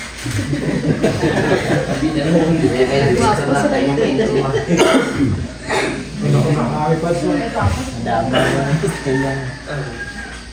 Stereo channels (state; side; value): identical; both; correlation 1.00